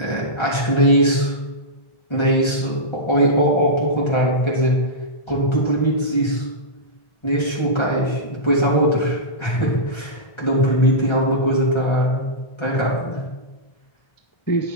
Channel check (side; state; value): right; late; 1.3 ms